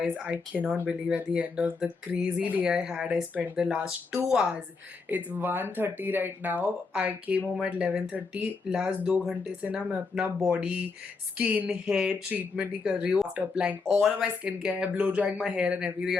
I cannot believe at the end of the crazy day I had, I spent the last 2 hours. It's 1:30 right now. I came home at 11:30. Last 2 घंटे से ना मैं अपना body, skin, hair treatment ही कर रही हूँ. After applying all of my skincare, blow drying my hair and everything,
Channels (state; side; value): quieter; right; 4.4 dB